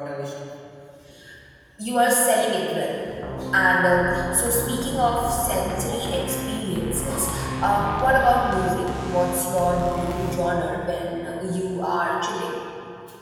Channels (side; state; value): both; identical; correlation 1.00